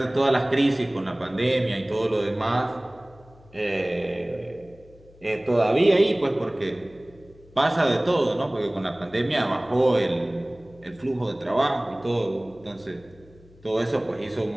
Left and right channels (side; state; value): left; noise; hum, 25 dB below the sound